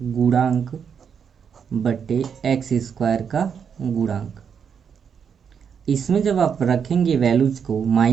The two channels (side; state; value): left; quieter; 7.1 dB